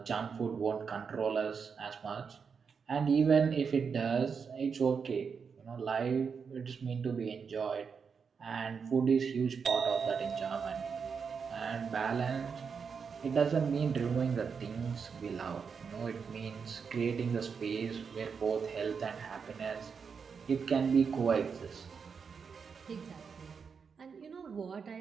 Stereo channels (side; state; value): left; quieter; 6.0 dB